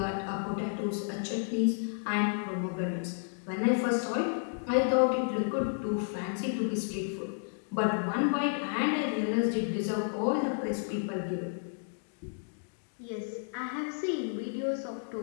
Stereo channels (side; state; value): right; silent; digital silence